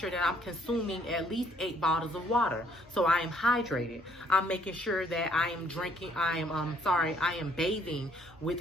that I'm consuming at least 8 bottles of water, so I am hydrated. I'm making sure that I am bathing with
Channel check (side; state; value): both; normal; correlation 0.65